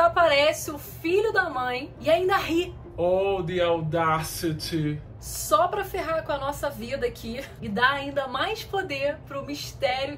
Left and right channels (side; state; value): both; identical; correlation 1.00